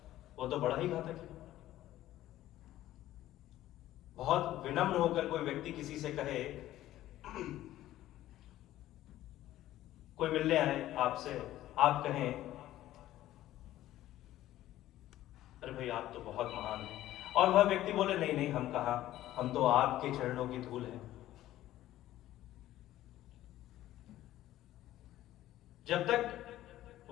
वो तो बड़ा ही घातक है। बहुत विनम्र होकर कोई व्यक्ति किसी से कहे, कोई मिलने आए आपसे, आप कहें, अरे भाई आप तो बहुत महान हैं, और वह व्यक्ति बोले, नहीं नहीं हम कहा, हम तो आपके चरणों की धूल हैं। जब तक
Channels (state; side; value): quieter; right; 14.2 dB